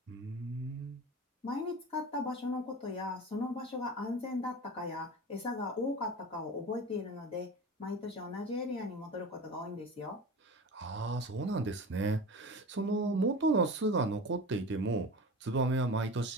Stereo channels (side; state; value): both; normal; correlation 0.33